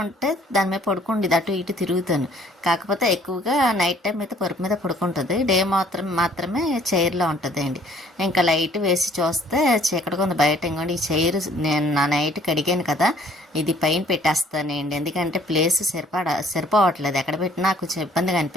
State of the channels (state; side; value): normal; both; correlation 0.59